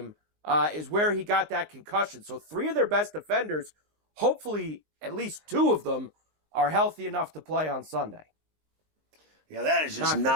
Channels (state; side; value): late; left; 19 ms